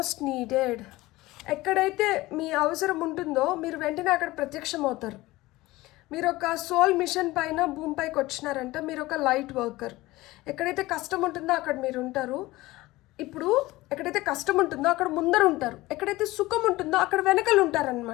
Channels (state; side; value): quieter; right; 19.0 dB